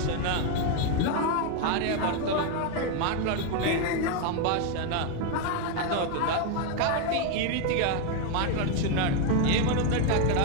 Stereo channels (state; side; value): different; both; correlation 0.01